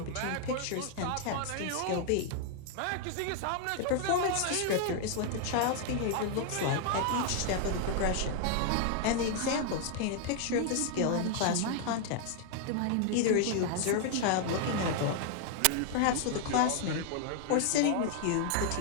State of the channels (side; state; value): both; different; correlation 0.00